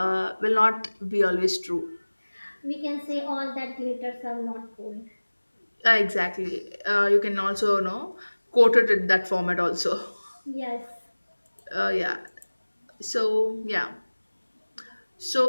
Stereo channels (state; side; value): inverted; both; correlation -1.00